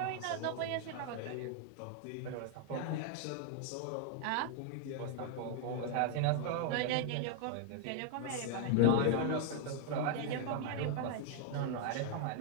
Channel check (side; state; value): both; different; correlation 0.00